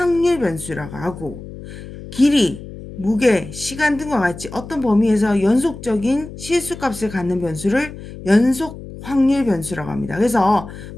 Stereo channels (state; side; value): noise; left; hum, 13 dB below the sound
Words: 변수라고 하고, 길이, 무게, 시간 등과 같이 어떤 범위에서 연속적인 실수값을 갖는 변수를 연속 확률 변수라고 합니다. 그래서